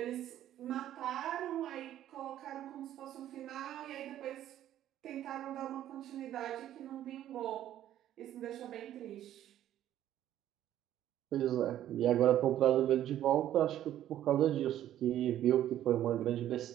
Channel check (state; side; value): quieter; left; 12.1 dB